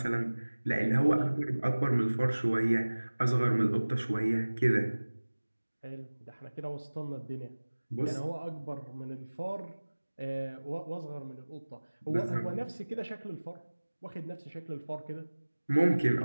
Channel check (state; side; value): inverted; both; correlation -1.00